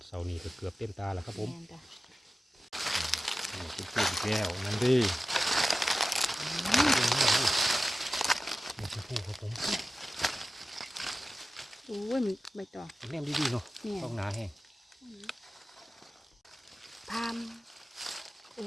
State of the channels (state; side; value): normal; both; correlation 0.95